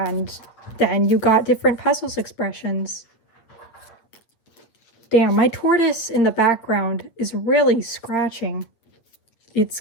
then you got different puzzles expressions. Damn, my tortoise in the background is really scratching. It's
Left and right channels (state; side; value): late; right; 8.7 ms